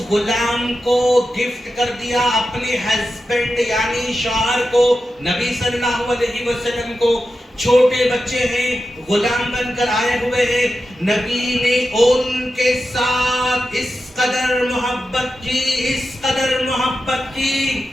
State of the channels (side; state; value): both; normal; correlation 0.91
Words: غلام کو گفٹ کر دیا اپنے ہسبینڈ یعنی شوہر کو، نبی صلی اللہ علیہ وسلم کو. چھوٹے بچے ہیں، غلام بن کر آئے ہوئے ہیں. نبی نے ان کے ساتھ اس قدر محبت کی، اس قدر محبت کی،